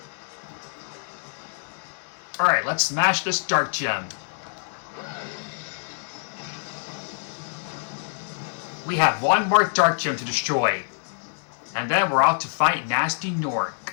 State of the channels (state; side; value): silent; right; 59 dB below the other